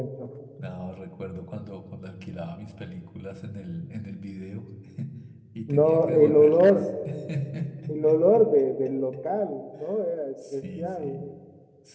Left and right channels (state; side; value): identical; both; correlation 1.00